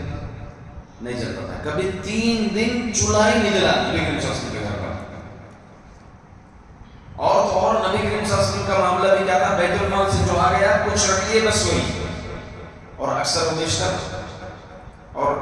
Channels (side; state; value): both; identical; correlation 1.00